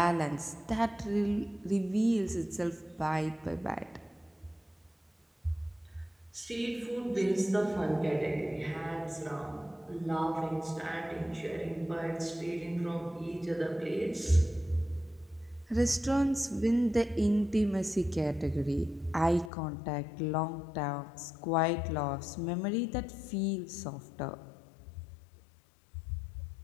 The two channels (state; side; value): drops out; right; at 19.5 s